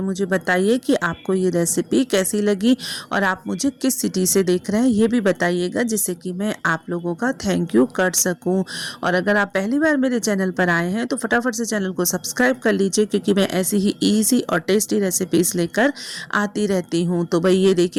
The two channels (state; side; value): identical; both; correlation 1.00